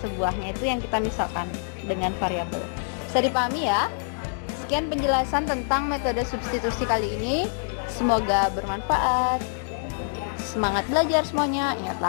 sebuahnya itu yang kita misalkan dengan variabel. Bisa dipahami ya? Sekian penjelasan tentang metode substitusi kali ini. Semoga bermanfaat. Semangat belajar semuanya. Ingat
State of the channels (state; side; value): silent; right; 61 dB below the other